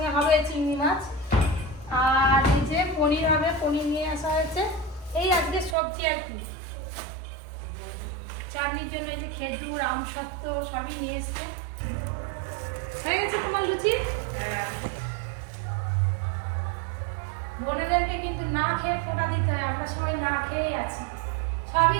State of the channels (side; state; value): left; drops out; at 5.8 s